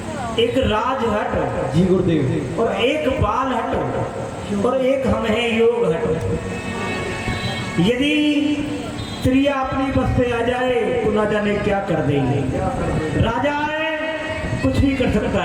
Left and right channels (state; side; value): identical; both; correlation 1.00